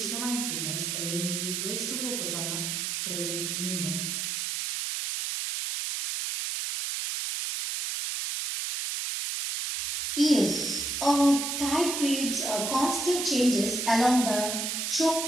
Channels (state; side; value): noise; right; hiss, 2 dB below the sound